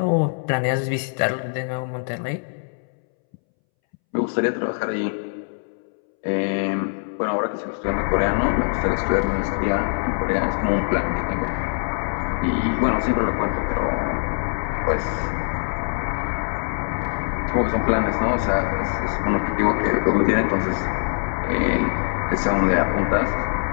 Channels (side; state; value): right; silent; 63 dB below the other